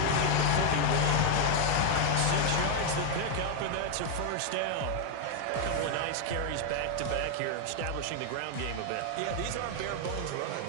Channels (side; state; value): both; different; correlation 0.00